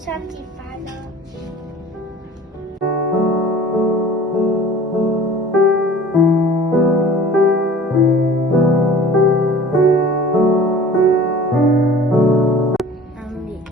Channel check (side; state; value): both; normal; correlation 0.45